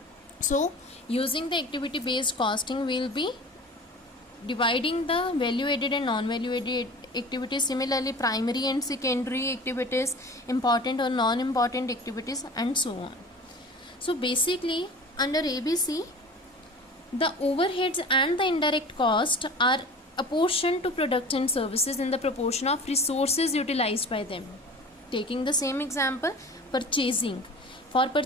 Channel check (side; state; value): both; normal; correlation 0.39